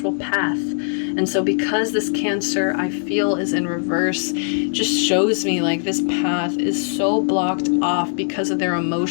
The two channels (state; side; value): silent; right; digital silence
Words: path. And so because this Cancer, I feel, is in reverse, just shows me like this path is so blocked off because of their